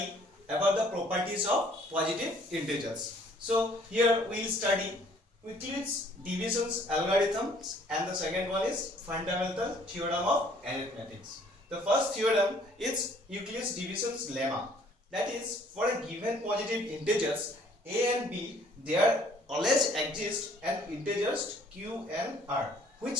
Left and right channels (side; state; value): both; normal; correlation 0.59